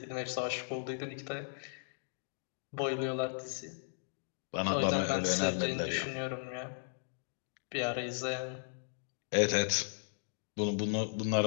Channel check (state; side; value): silent; right; digital silence